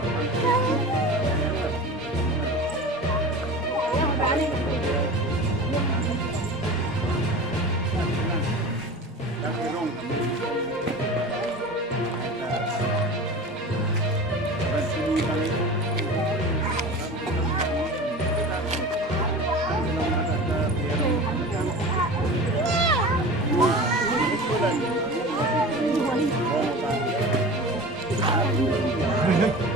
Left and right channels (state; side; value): normal; both; correlation 0.34